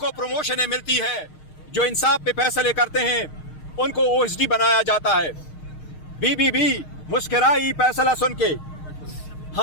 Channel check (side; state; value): right; late; 6.5 ms